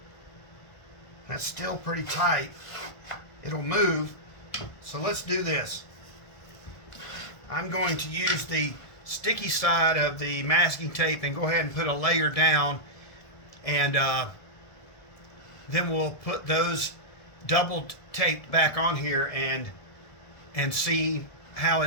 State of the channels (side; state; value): right; late; 1.5 ms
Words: That's still pretty tight. It'll move. So let's do this. I'm going to use the sticky side of the masking tape and go ahead and put a layer down, and then we'll put those double taped back on here and see how